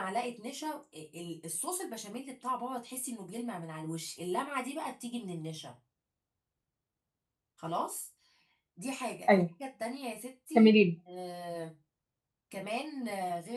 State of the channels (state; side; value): identical; both; correlation 1.00